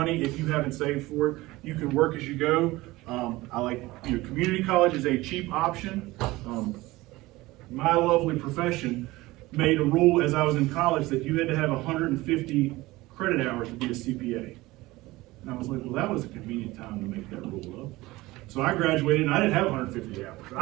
if you haven't saved for it. You can work as you go. I like, you know, community college is a cheap option. My lovely profession made a rule as I was in college that you had to have 150 credit hours to be a CPA. And I was like, well, that was a convenient time to make that rule up. So I graduated and I didn't have 150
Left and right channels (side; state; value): left; quieter; 19.6 dB